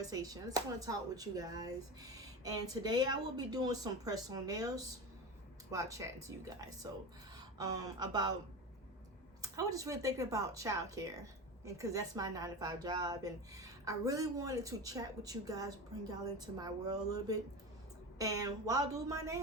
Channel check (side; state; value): both; normal; correlation 0.25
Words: I just want to talk with you guys, and today I will be doing some press-on nails while chatting to you guys. So I was just really thinking about childcare, and because that's my 9-to-5 job, and I really wanted to chat with you guys, bring y'all into my world a little bit, and while doing my